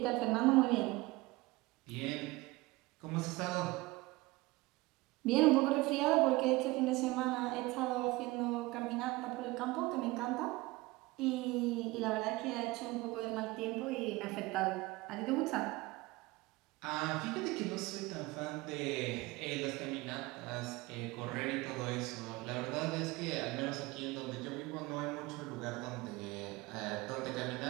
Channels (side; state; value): left; quieter; 21.4 dB